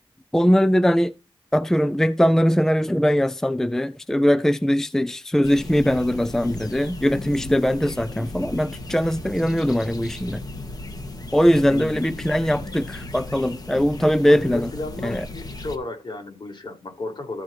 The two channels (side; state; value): both; normal; correlation 0.98